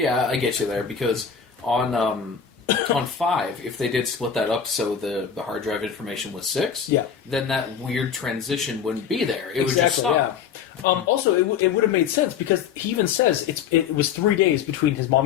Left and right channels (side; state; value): right; quieter; 7.4 dB